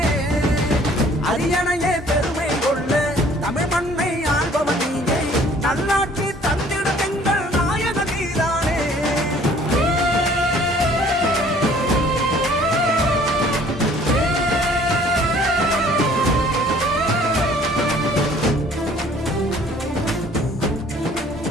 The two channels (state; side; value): normal; both; correlation 0.55